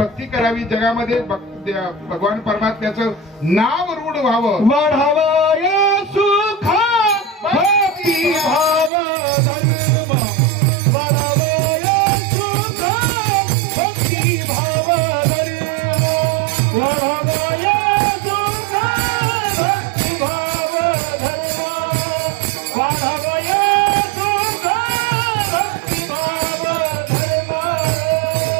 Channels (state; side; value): drops out; left; at 8.9 s